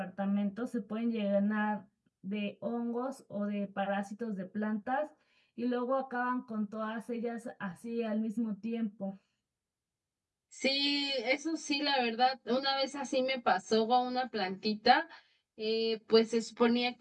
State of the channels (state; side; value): identical; both; correlation 1.00